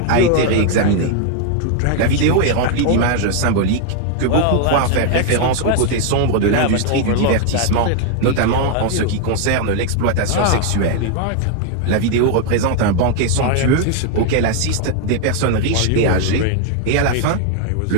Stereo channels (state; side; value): different; both; correlation 0.00